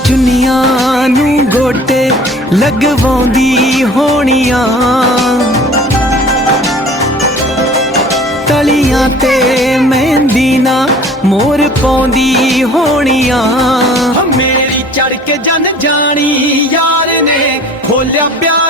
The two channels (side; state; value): both; normal; correlation 0.47